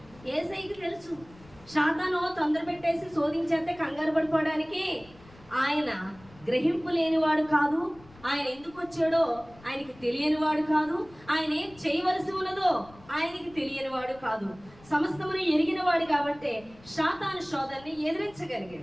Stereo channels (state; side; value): noise; left; rumble, 24 dB below the sound